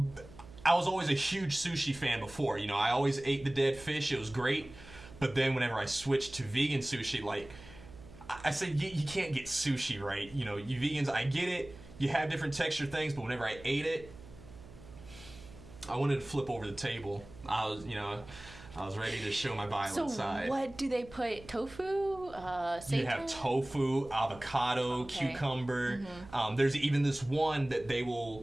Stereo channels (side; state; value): right; noise; hum, 18 dB below the sound